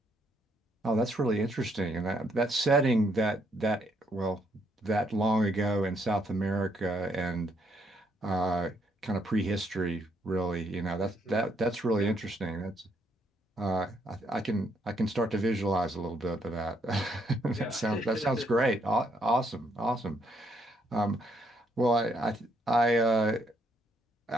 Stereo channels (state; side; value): normal; both; correlation 0.73